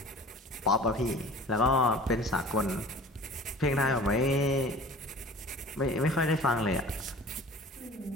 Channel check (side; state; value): both; normal; correlation 0.43